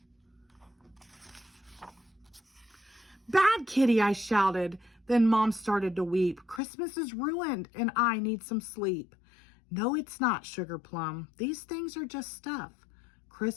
"Bad kitty," I shouted. Then Mom started to weep. "Christmas is ruined and I need some sleep." "No, it's not, Sugar Plum. These things are just stuff.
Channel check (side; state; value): right; drops out; at 6.6 s